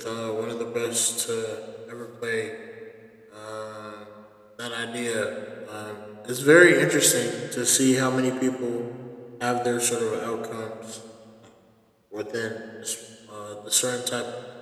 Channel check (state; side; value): identical; both; correlation 1.00